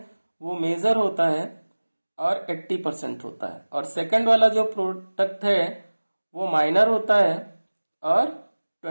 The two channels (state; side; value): inverted; both; correlation -1.00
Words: वो मेजर होता है और 80% होता है, और सेकंड वाला जो प्रोडक्ट है वो माइनर होता है और